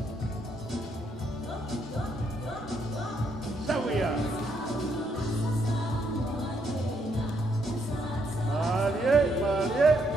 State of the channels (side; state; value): both; normal; correlation 0.74